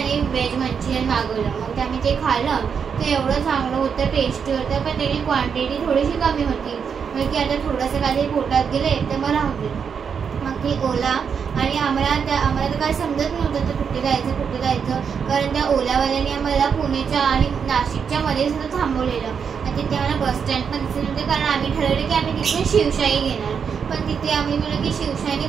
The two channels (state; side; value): quieter; left; 6.7 dB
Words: व्हेज मंचुरियन मागवलं. मग आम्ही ते खाल्लं. ते एवढं चांगलं होतं, टेस्टी होतं, पण त्याची क्वांटिटी थोडीशी कमी होती. म्हणजे की आता थोडंसं काहीतरी पोटात गेले तर मला राहते. मग ती ओला आणि आम्हाला तर काय समजत नव्हतं तर कुठे जायचं, कारण त्या ओलावाल्याने आम्हाला पुण्याच्या आणि नाशिकच्या मध्ये सुद्धा थांबवलेलं. आणि तिथे आम्हाला बस स्टँड पण दिसत नव्हते, कारण आम्ही ठरवलं की आम्ही तिथे शिवशाही घेणार. पण तिथे आम्ही म्हणलं की शिवशाहीने